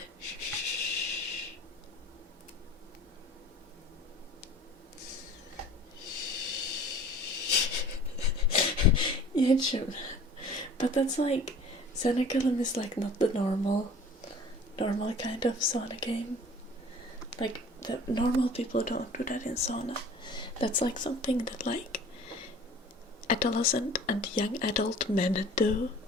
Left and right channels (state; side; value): normal; both; correlation 0.46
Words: Yeah, sure. But that's like, sauna golem is like not the normal kind of sauna game. Like, the normal people don't do that in sauna. That's like something that like adolescent and young adult men do